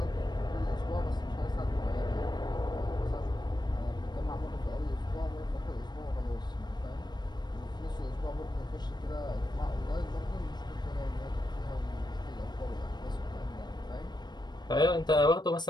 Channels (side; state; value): right; late; 0.21 ms